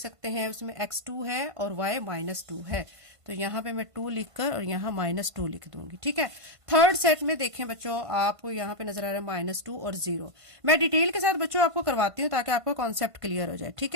हैं, उसमें x 2 है और y -2 है। तो यहाँ पे मैं 2 लिखकर और यहाँ -2 लिख दूंगी। ठीक है, थर्ड सेट में देखें बच्चों, आपको यहाँ पे नजर आ रहा है -2 और 0। मैं डिटेल के साथ बच्चों आपको करवाती हूँ ताकि आपको कॉन्सेप्ट क्लियर हो जाए। ठीक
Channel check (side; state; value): left; late; 1.5 ms